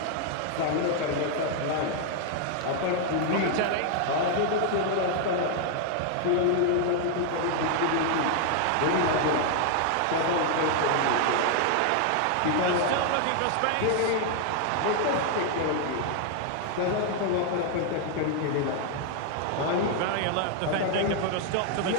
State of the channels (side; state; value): both; different; correlation 0.00